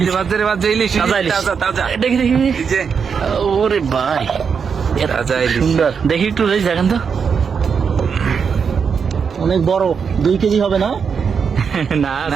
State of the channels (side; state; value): left; quieter; 6.3 dB